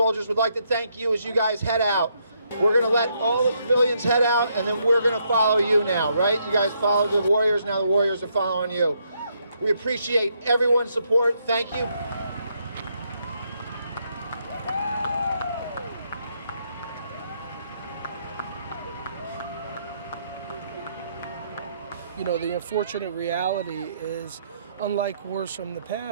would like to thank you as you guys head out. We're going to let all the civilians head out, and then we're going to follow you now, right? You guys follow the warriors, now the warriors are following you. We appreciate everyone's support. Thank you. You know, the unfortunate reality is, unlike wars from the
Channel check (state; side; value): inverted; both; correlation -0.75